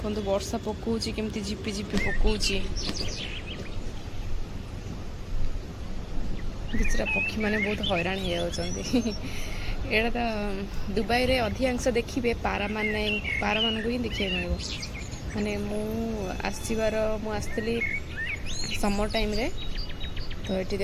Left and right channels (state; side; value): identical; both; correlation 1.00